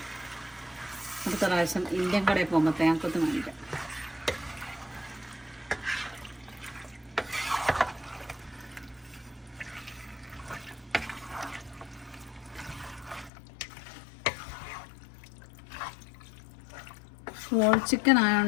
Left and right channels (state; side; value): drops out; right; at 13.3 s